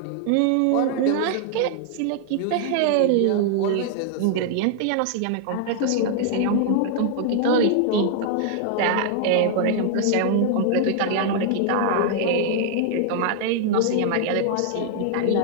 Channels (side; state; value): both; different; correlation -0.01